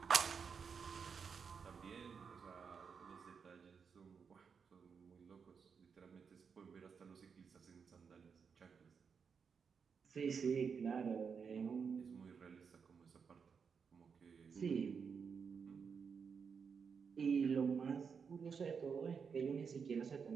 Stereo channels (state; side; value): quieter; left; 6.1 dB